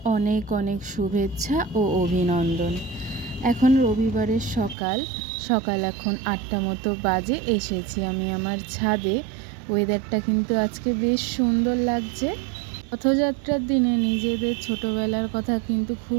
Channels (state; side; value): drops out; left; at 4.8 s